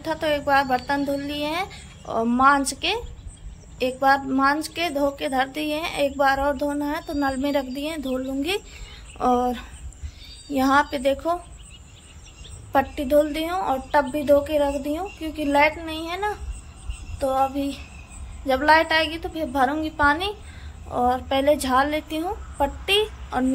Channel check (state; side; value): identical; both; correlation 1.00